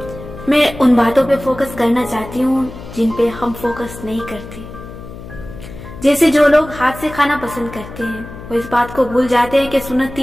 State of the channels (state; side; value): noise; left; hum, 14 dB below the sound